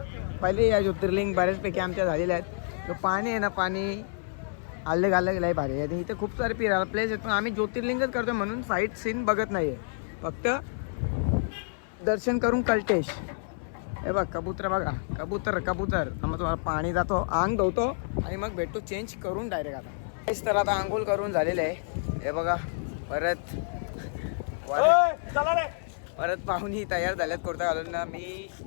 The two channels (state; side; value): silent; right; 58 dB below the other